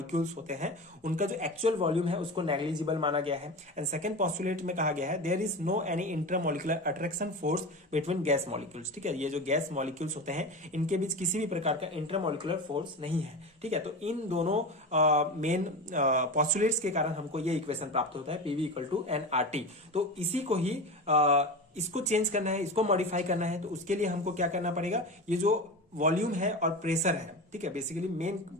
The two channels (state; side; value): normal; both; correlation 0.26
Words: होते हैं उनका जो एक्चुअल वॉल्यूम है उसको नेग्लिजिबल माना गया है। एंड सेकंड पॉस्टुलेट में कहा गया है there is no any intermolecular attraction force between gas molecules. ठीक है, ये जो गैस मॉलिक्यूल्स होते हैं इनके बीच किसी भी प्रकार का इंटरमॉलिक्यूलर फोर्स नहीं है। ठीक है, तो इन दोनों मेन पॉस्टुलेट्स के कारण हमको ये इक्वेशन प्राप्त होता है पीवी इक्वल टू एनआरटी। तो इसी को ही इसको चेंज करना है, इसको मॉडिफाई करना है, तो उसके लिए हमको क्या करना पड़ेगा, ये जो वॉल्यूम है और प्रेशर है, ठीक है, बेसिकली मेन